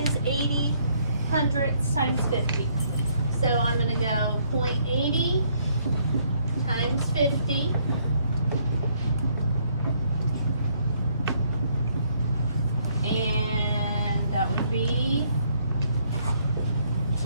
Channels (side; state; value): both; inverted; correlation -0.68